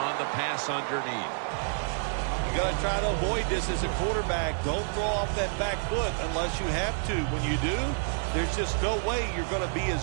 the pass underneath. You got to try to avoid this as a quarterback. Don't throw off that back foot unless you have to. When you do, there's just no way you're going to be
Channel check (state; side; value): silent; left; digital silence